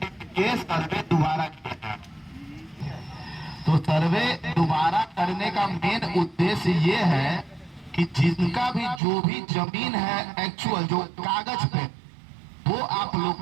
के लिए सर्वे दोबारा किया है। तो सर्वे दोबारा करने का मेन उद्देश्य ये है कि जिनका भी जो भी जमीन है एक्चुअल जो कागज पे, वो आप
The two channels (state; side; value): drops out; left; at 9.0 s